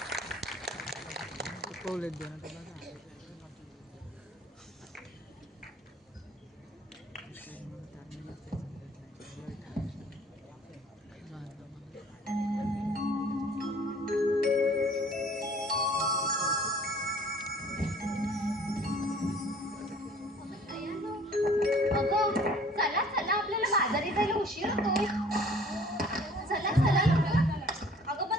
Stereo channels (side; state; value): both; normal; correlation 0.52